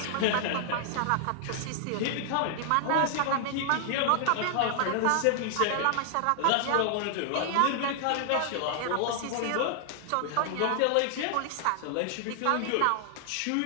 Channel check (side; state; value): both; different; correlation 0.00